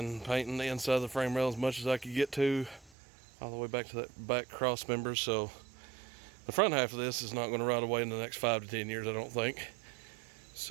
painting the inside of the frame rail as much as I could get to, all the way back to that back cross member. So the front half of this is not going to rot away in the next 5 to 10 years, I don't think.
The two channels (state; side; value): drops out; left; at 2.9 s